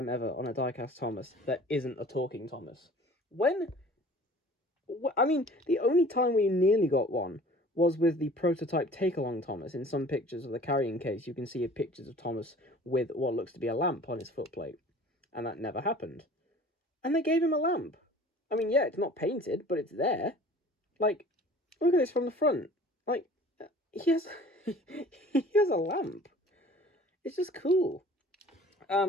ever on a die-cast Thomas that isn't a talking Thomas. I mean, the only time we nearly got one was with the prototype Take-Along Thomas. In some pictures of the carrying case, you can see pictures of Thomas with what looks to be a lamp on his footplate. And that never happened. And they gave him a lamp. I mean, yeah, it's not painted, but it's there. Like, look at this from the front. Like, he has he has a lamp. It's just cool.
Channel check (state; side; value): normal; both; correlation 0.47